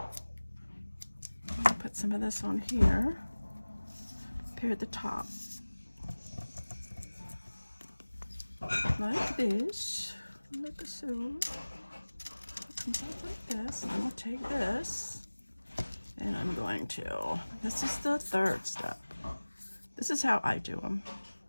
gonna put some of this on here, here at the top. Like this. Look so. Like this, and I'm going to take this, and I'm going to, this is the third step. This is how I do them.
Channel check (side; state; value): both; inverted; correlation -1.00